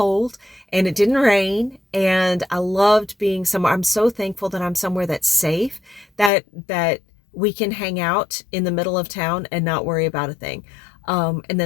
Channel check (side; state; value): right; drops out; at 6.3 s